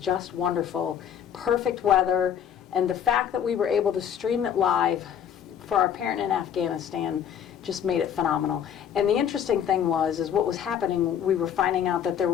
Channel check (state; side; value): quieter; right; 8.9 dB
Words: wonderful. Perfect weather, and the fact that we were able to stream it live for our parent in Afghanistan just made it phenomenal. And the interesting thing is what was happening, we were finding out that there